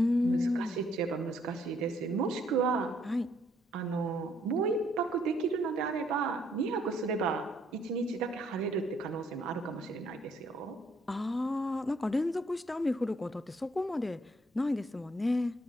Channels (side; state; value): both; normal; correlation 0.68